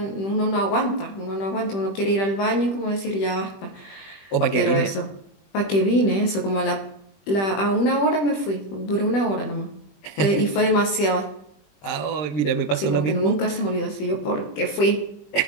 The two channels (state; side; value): late; right; 20 ms